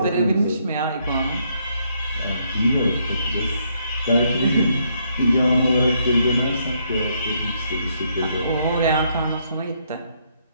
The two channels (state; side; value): inverted; both; correlation -0.73